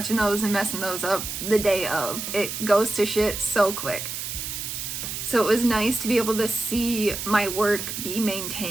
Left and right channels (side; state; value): right; noise; hiss, 5 dB below the sound